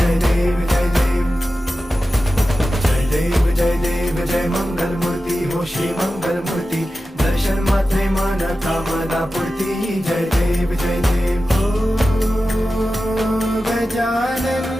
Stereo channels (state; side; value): normal; both; correlation 0.93